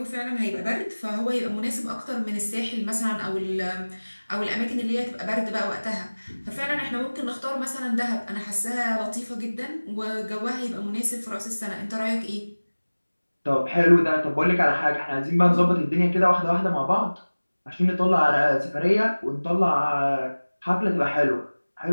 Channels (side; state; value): both; inverted; correlation -1.00